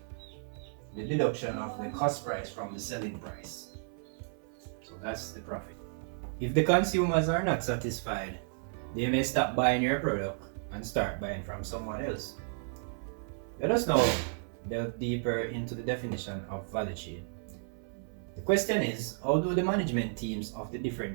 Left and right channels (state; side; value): silent; left; 56 dB below the other